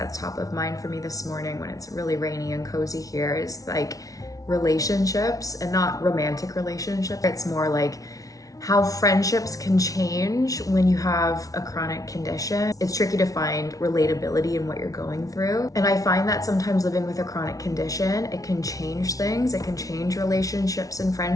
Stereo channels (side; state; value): right; late; 0.17 ms